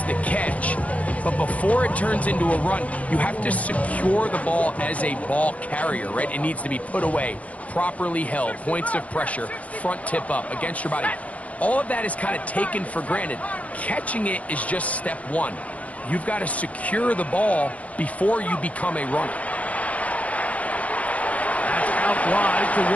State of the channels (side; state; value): right; late; 0.067 ms